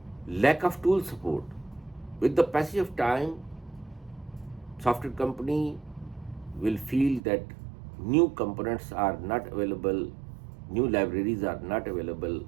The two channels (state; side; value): drops out; left; at 7.2 s